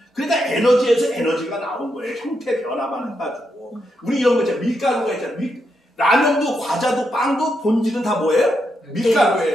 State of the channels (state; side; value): normal; both; correlation 0.82